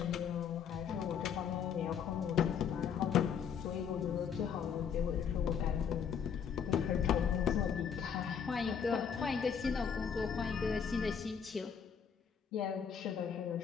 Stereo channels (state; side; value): quieter; right; 7.3 dB